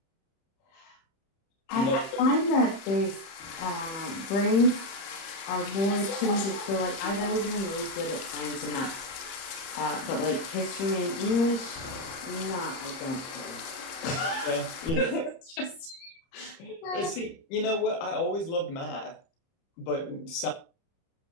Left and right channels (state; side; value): late; right; 31 ms